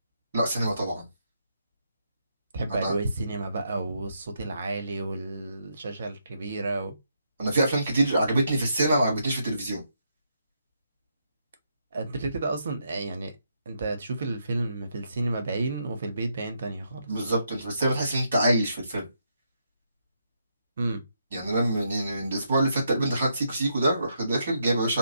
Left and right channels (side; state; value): both; inverted; correlation -0.78